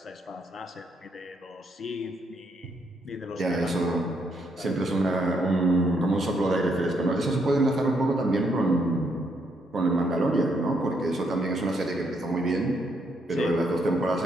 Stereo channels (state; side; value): normal; both; correlation 0.74